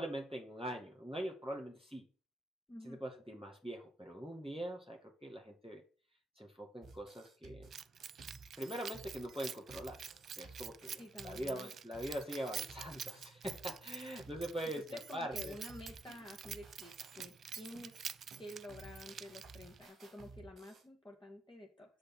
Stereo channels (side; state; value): both; normal; correlation 0.78